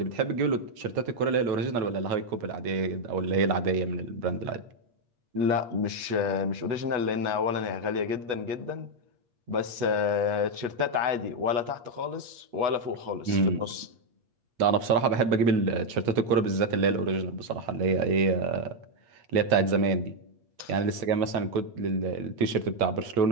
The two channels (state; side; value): late; left; 8.5 ms